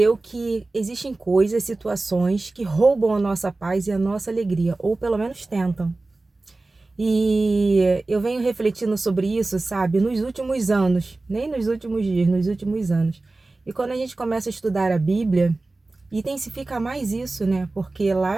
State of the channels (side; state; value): left; quieter; 3.2 dB